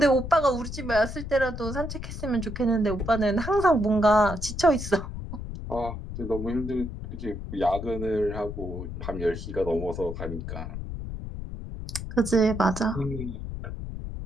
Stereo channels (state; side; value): noise; left; rumble, 7 dB below the sound